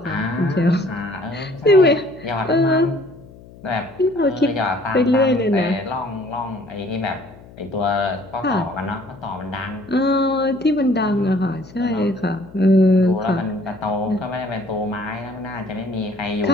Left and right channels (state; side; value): noise; left; hum, 21 dB below the sound